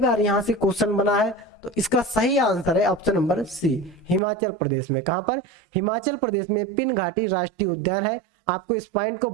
यहां से क्वेश्चन बना है। तो इसका सही आंसर है option number C, Himachal Pradesh में। कहां पर? हिमाचल प्रदेश में पिन घाटी राष्ट्रीय उद्यान है। आपको इस पॉइंट को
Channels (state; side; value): drops out; left; at 4.2 s